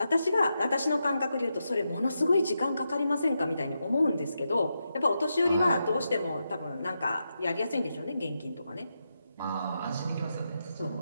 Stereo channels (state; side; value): inverted; both; correlation -0.86